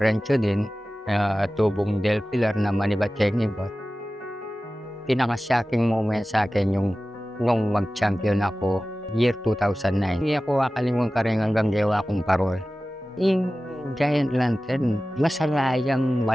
din, tubong Del Pilar na Manibat-Chenibot. Pinaka-shocking moment sa akin yung nung mag-champion ako, year 2009. Hindi ako kakalimutan ka rin hanggang gawa kong parol. Yung Giant Lantern, masalayang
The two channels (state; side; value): normal; both; correlation 0.96